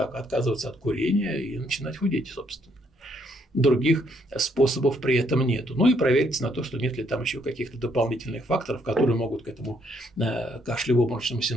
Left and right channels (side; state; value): both; normal; correlation 0.71